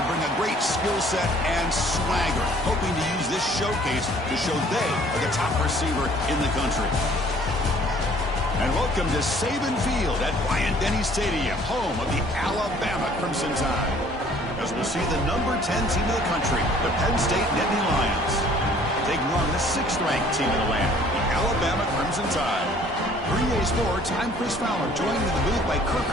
bring a great skill set and swagger, hoping to use this showcase to show they are the top receiver in the country. And welcome to Saban Field at Bryant-Denny Stadium, home of the Alabama Crimson Tide. As we'll see the number 10 team in the country, the Penn State Nittany Lions, taking on the 6th-ranked team in the land, the Alabama Crimson Tide. 3A Sports, I'm Chris Fowler, joined in the booth by Kirk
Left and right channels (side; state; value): both; normal; correlation 0.56